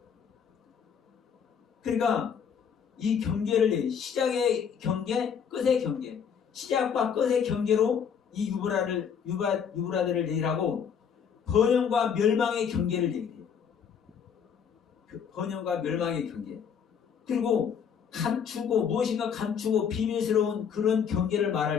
그러니까 이 경계를 시작의 경계, 끝의 경계, 시작과 끝의 경계로 이 유브라데를 얘기하고 번영과 멸망의 경계를 얘기해요. 번영과 멸망의 경계. 그리고 감추고 무엇인가 감추고 비밀스러운 그런 경계를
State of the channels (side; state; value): right; quieter; 7.3 dB